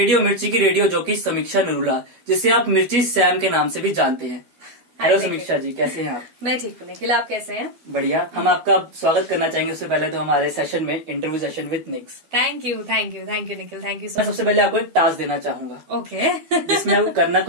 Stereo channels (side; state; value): left; late; 12 ms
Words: मिर्ची की रेडियो जॉकी समीक्षा नरूला, जिसे आप मिर्ची सैम के नाम से भी जानते हैं। हेलो समीक्षा जी, कैसे हैं आप। मैं ठीक हूँ निखिल, आप कैसे हैं। बढ़िया। हम आपका स्वागत करना चाहेंगे उससे पहले तो हमारे सेशन में, interview session with Nicks. Thank you Nikhil, thank you. मैं सबसे पहले आपको एक टास्क देना चाहूंगा। ओके। जिसमें आपको करना